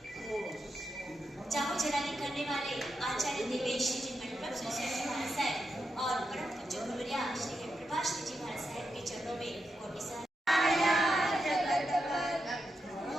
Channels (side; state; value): both; normal; correlation 0.86